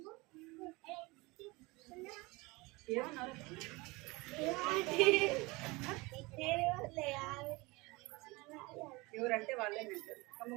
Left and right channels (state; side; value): quieter; left; 24.0 dB